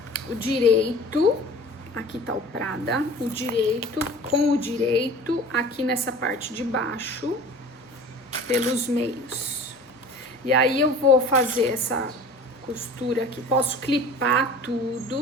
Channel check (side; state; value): both; normal; correlation 0.42